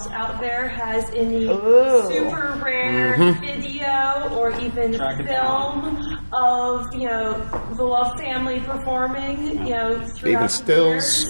out there has any super rare video or even film of, the Love family performing, throughout Even the stills.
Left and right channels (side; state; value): both; inverted; correlation -1.00